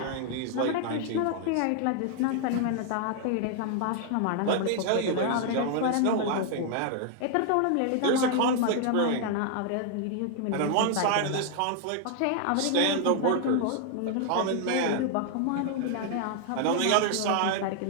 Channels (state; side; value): different; both; correlation 0.00